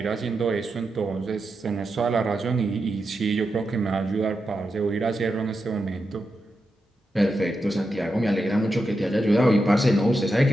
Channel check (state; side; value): normal; both; correlation 0.88